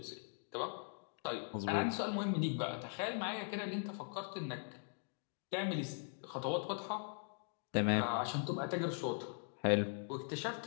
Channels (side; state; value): right; silent; 51 dB below the other